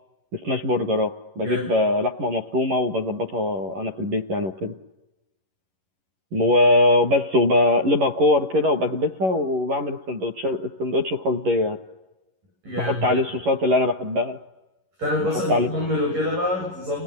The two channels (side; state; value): left; late; 11 ms